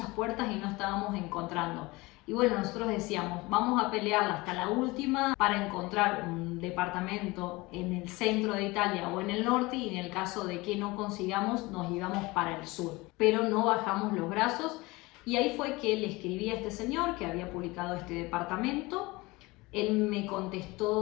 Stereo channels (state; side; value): quieter; right; 22.5 dB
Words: puertas y no estábamos encontrando. Y bueno, nosotros decíamos, vamos a pelearla hasta la última para encontrar un departamento en el centro de Italia o en el norte, y en el caso de que no consigamos nos íbamos para el sur. Pero no bajamos los brazos y ahí fue que le escribí a este señor que había publicado este departamento. Él me